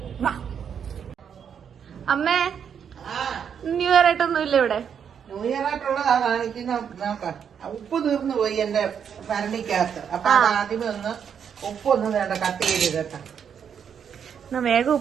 വാ അമ്മേ, ന്യൂ ഇയർ ആയിട്ടൊന്നും ഇല്ല ഇവിടെ. ന്യൂ ഇയർ ആയിട്ടുള്ളതാ കാണിക്കുന്ന. നോക്കാം, ഉപ്പ് തീർന്നു പോയി എന്റെ ഭരണിക്കകത്ത്. അപ്പൊ അത് ആദ്യമേ ഒന്ന് ഉപ്പൊന്നും വേണ്ട, കട്ട് ചെയ്ത് കേട്ടോ. വേഗം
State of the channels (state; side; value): quieter; left; 7.7 dB